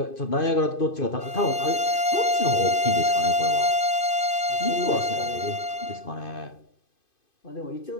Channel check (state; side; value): late; right; 2.5 ms